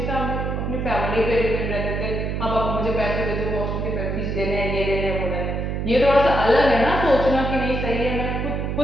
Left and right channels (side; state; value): right; noise; hum, 2 dB below the sound